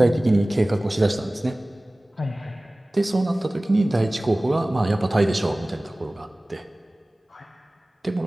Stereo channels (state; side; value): normal; both; correlation 0.98